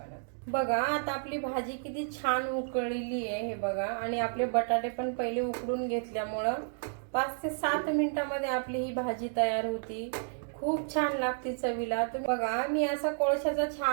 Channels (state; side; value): silent; left; digital silence